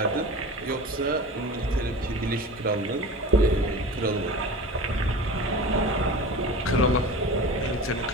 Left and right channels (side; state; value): both; normal; correlation 0.34